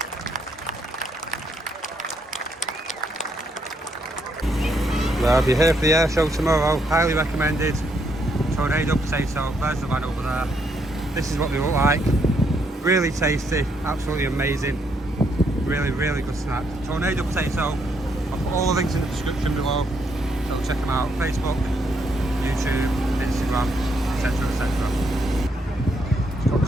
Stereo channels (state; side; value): normal; both; correlation 0.74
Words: Well, if you're here for the air show tomorrow, highly recommended. Tornado potato, there's the man over there. This is what they look like. Really tasty, absolutely amazing. Really, really good snack. Tornado potato. I'll put all the links in the description below. So check them out. Facebook, YouTube, Instagram, etc, etc. It's got